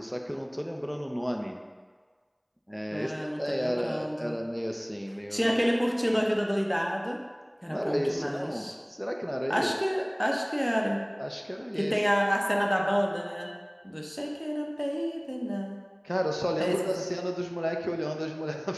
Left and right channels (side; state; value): both; identical; correlation 1.00